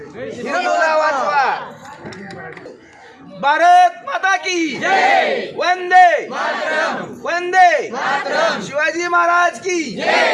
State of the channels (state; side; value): identical; both; correlation 1.00